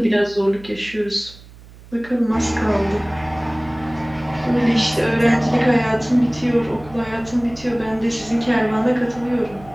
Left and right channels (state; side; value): noise; right; hum, 21 dB below the sound